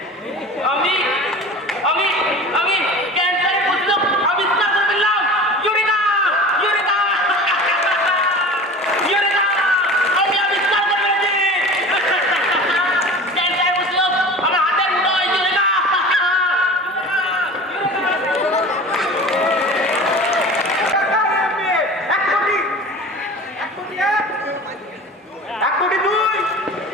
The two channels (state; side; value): normal; both; correlation 0.37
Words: আমি আমি আমি ক্যান্সারের প্রতিরোধ আবিষ্কার করে ফেললাম। ইউরেকা ইউরেকা ইউরেকা, আমি আবিষ্কার করে ফেলেছি ক্যান্সারের প্রতিরোধ আমার হাতের মুঠোয়। ইউরেকা এক কোটি দুই,